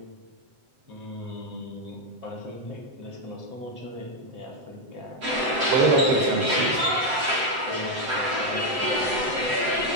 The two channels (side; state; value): left; late; 7.8 ms